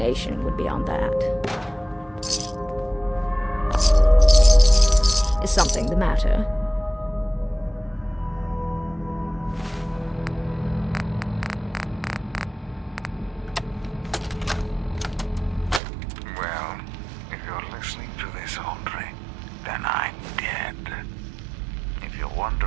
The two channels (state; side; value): drops out; left; at 15.8 s